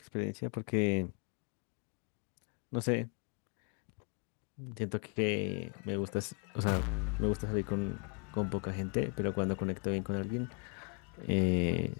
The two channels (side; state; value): right; quieter; 38.5 dB